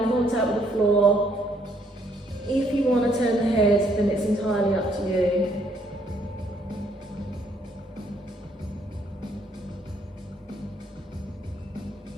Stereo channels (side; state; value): both; normal; correlation 0.68